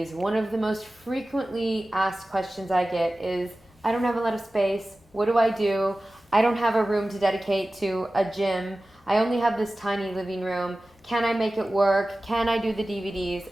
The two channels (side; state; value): both; normal; correlation 0.96